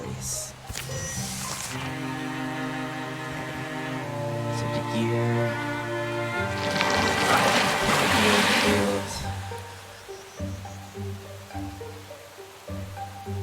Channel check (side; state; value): both; identical; correlation 1.00